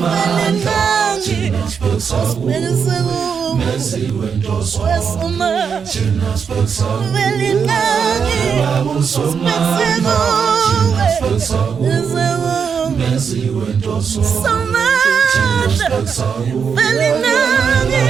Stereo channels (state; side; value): quieter; left; 6.5 dB